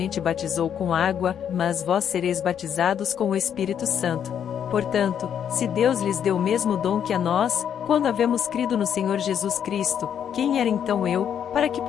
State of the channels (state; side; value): quieter; right; 8.8 dB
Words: batizou com água, mas vós sereis batizados com o Espírito Santo. Portanto, se Deus lhes deu o mesmo dom que a nós, quando havemos crido no Senhor Jesus Cristo, quem era então eu, para que